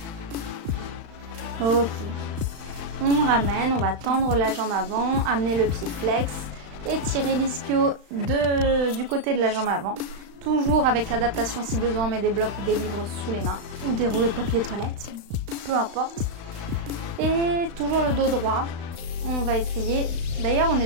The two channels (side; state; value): left; late; 35 ms